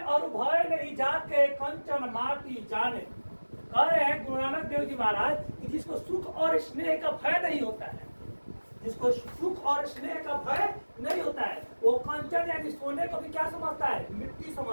और भय नहीं जाके कंचन माटी जाने। कह रहे हैं गुरु नानक देव जी महाराज कि जिसको सुख और स्नेह का भय नहीं होता है, जिसको सुख और स्नेह का भय नहीं होता है, वो कंचन यानी सोने को भी क्या समझता है, मिट्टी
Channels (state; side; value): inverted; both; correlation -1.00